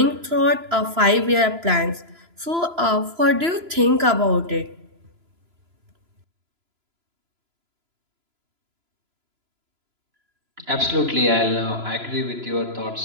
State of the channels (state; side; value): late; left; 3.0 ms